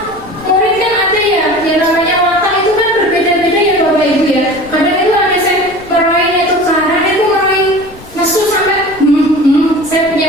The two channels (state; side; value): noise; left; rumble, 21 dB below the sound